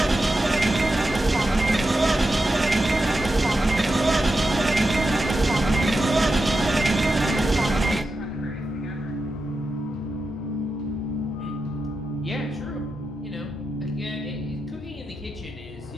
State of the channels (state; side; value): normal; both; correlation 0.89